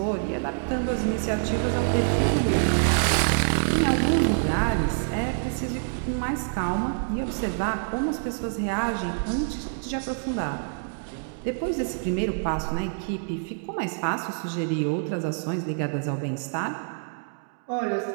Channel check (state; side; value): silent; left; digital silence